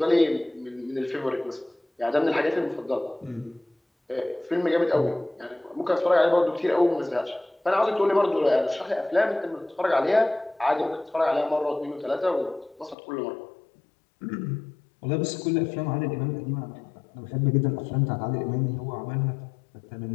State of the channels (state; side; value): drops out; right; at 13.0 s